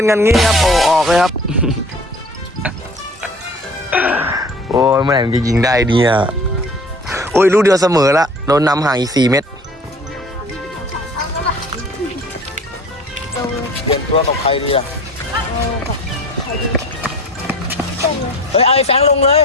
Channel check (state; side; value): normal; both; correlation 0.45